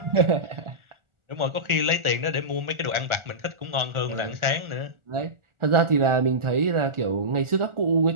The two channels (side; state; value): left; late; 1.4 ms